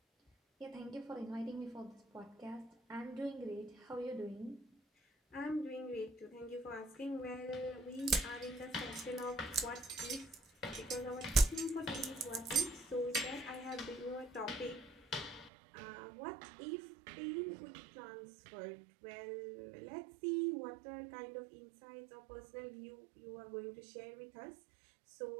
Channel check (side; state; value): left; drops out; at 15.5 s